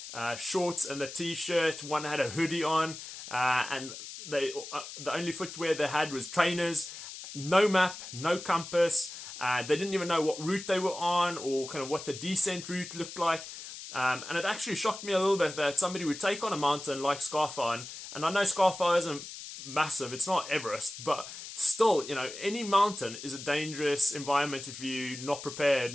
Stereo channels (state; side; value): noise; left; hiss, 11 dB below the sound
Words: shorts and a t-shirt. One had a hoodie on, and the only footwear they had was trainers. No map, no compass. They didn't even know what route they were on, or kind of what the descent route looked like. And it actually shocked me a little bit that somebody would take on a mountain like Scarfire, and I know Scarfire isn't massive, it's not Everest, but still, any mountain is a dangerous environment if you're not prepared